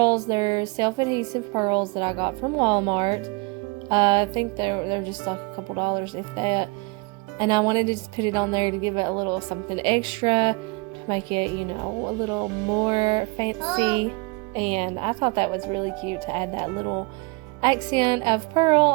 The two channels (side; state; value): left; quieter; 28.2 dB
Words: they're self-adhesive pearls that I got from Walmart. I think they're just like a couple dollars, if that. And I wanted to just put it on there to give it a little something extra, to make it, you know, a little more fancy. And I thought that was really cute to add that little accent of pearl